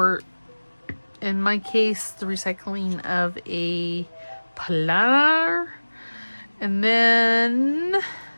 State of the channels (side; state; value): both; inverted; correlation -1.00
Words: in my case, the recycling of a planner. And then